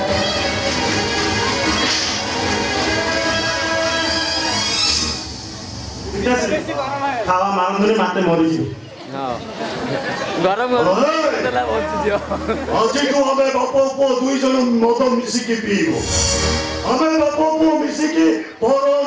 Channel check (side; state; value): both; identical; correlation 1.00